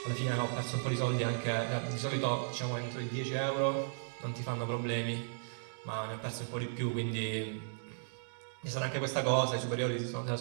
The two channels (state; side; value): silent; left; digital silence